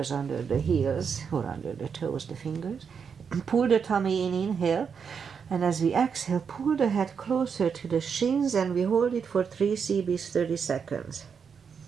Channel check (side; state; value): left; quieter; 6.5 dB